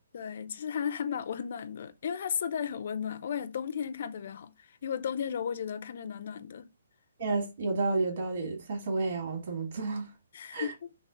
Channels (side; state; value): both; inverted; correlation -0.73